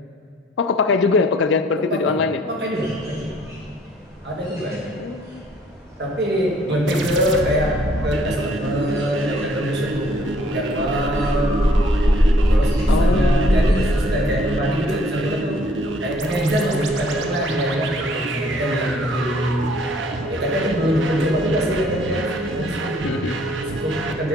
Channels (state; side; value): normal; both; correlation 0.60